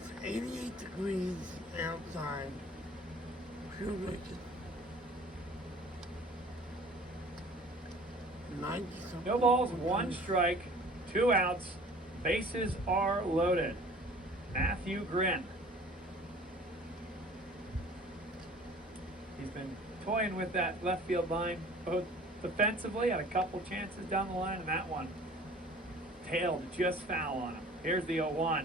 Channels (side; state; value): both; normal; correlation 0.48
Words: 88 degrees outside. Feels like it's 90 something. No balls, one strike, 2 outs. Bases are loaded. Matthew Grin. He's been toying with that left field line, both defensively, had a couple chances down the line, and that one tailed just foul on him. Here's the 0-1.